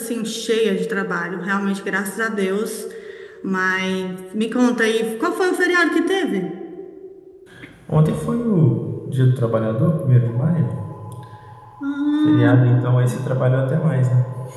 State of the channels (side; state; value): both; identical; correlation 1.00